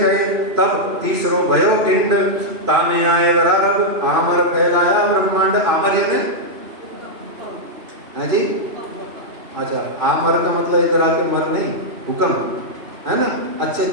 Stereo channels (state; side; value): late; left; 3.0 ms